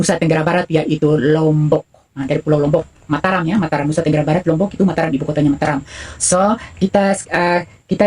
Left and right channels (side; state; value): both; identical; correlation 1.00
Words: Tenggara Barat, yaitu Lombok. Dari Pulau Lombok, Mataram ya, Mataram, Nusa Tenggara Barat, Lombok itu Mataram, ibu kotanya Mataram. So kita